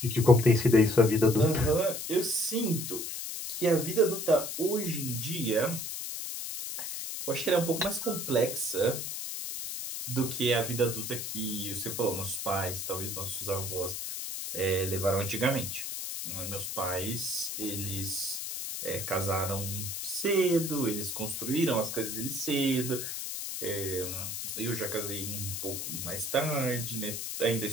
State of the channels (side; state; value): left; noise; hiss, 5 dB below the sound